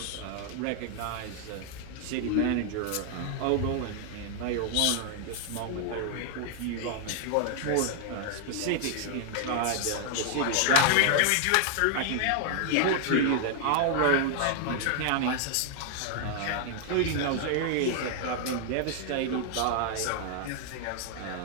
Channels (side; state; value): both; different; correlation 0.00